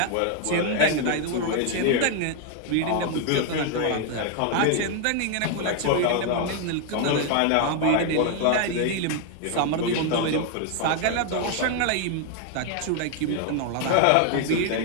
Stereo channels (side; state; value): both; different; correlation 0.01